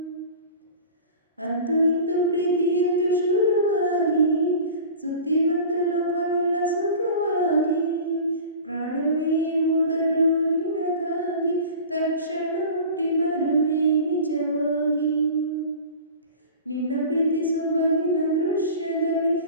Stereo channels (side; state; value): both; inverted; correlation -0.38